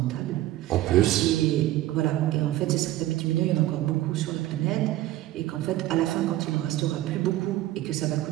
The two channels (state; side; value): quieter; left; 15.2 dB